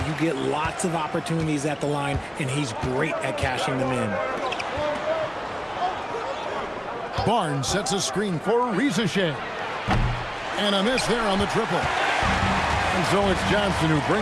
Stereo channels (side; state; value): both; identical; correlation 1.00